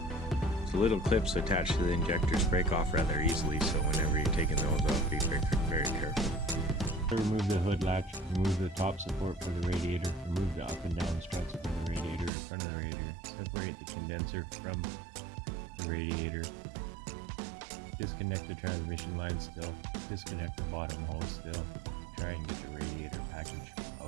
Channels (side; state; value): left; drops out; at 12.3 s